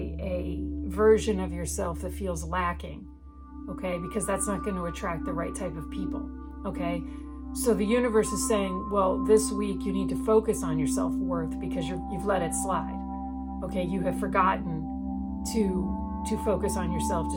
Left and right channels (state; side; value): identical; both; correlation 1.00